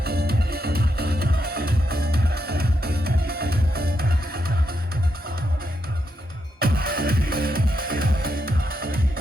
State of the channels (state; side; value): normal; both; correlation 0.82